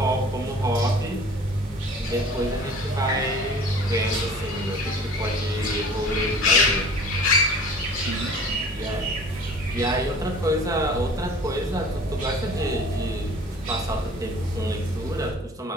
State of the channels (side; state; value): both; normal; correlation 0.45